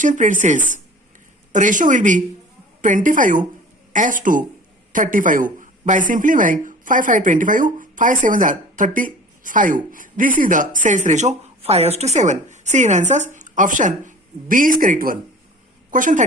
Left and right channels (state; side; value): normal; both; correlation 0.42